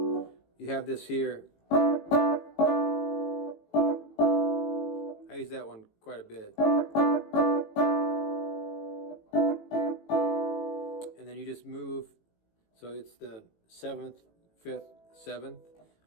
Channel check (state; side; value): late; right; 18 ms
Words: you have this here. I use that one quite a bit. And then you just move, so it's the 7th, 5th, 7th